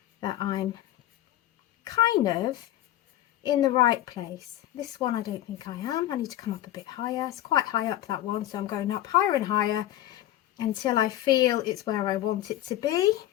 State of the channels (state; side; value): quieter; right; 13.8 dB